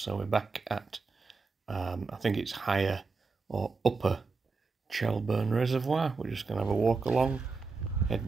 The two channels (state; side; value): quieter; left; 4.3 dB